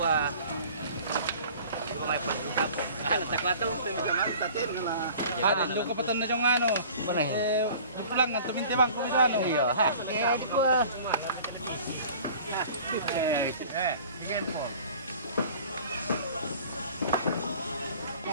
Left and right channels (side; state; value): both; inverted; correlation -0.46